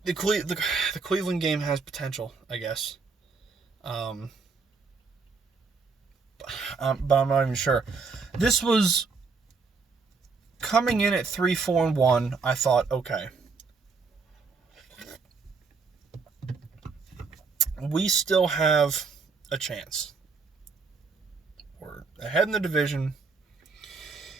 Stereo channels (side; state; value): left; quieter; 4.7 dB